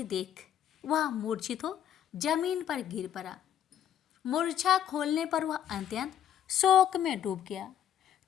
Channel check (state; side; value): quieter; right; 10.1 dB